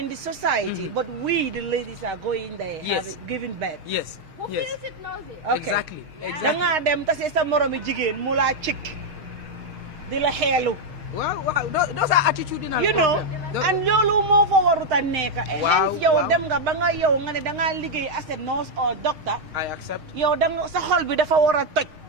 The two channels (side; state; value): left; late; 6.5 ms